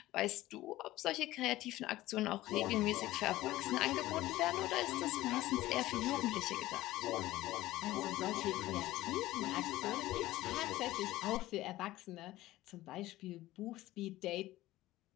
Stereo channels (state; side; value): quieter; right; 16.5 dB